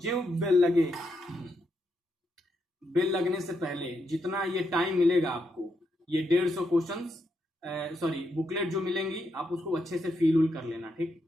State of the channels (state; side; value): normal; both; correlation 0.81